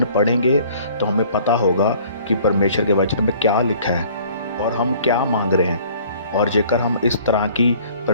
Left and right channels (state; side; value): inverted; both; correlation -0.53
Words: पढ़ेंगे तो हमें पता होगा कि परमेश्वर के वचन में क्या लिखा है और हम क्या मांग रहे हैं। और जेकर हम इस तरह की